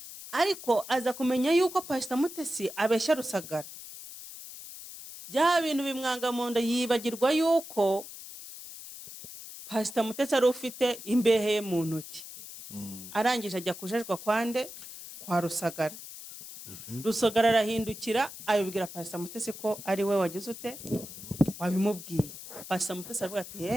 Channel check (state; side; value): noise; left; hiss, 13 dB below the sound